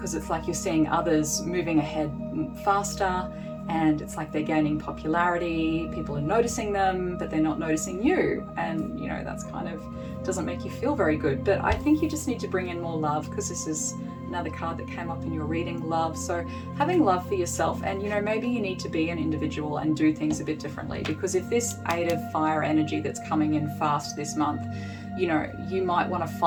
it's like you're seeing others moving ahead faster, and it's like they're gaining popularity, people are noticing them, but they're not noticing you, and that's kind of doesn't make you feel very good. But I think you just need to bring in more love, because this is another card that came up in your reading, love. So having love for yourself, and maybe you need to be an individual and do things a bit differently, because if this Eight of Fire energy that's coming in fast this month, you know, you might want to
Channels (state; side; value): identical; both; correlation 1.00